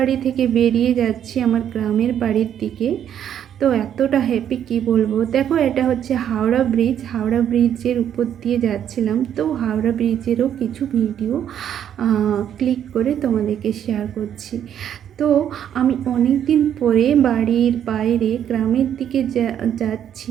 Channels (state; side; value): quieter; left; 9.7 dB